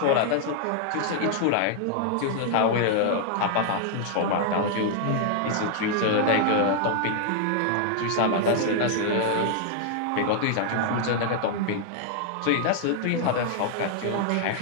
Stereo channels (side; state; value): both; different; correlation 0.00